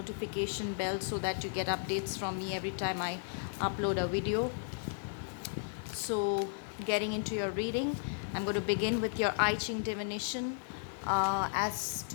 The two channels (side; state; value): right; silent; digital silence